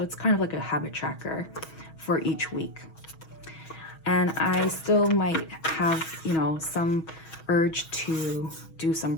it's kind of like a habit tracker for each week. And I still might have, you know, some urge to do some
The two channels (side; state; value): right; late; 6.3 ms